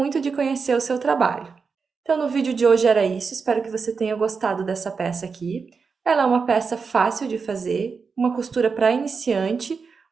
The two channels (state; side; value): quieter; left; 5.2 dB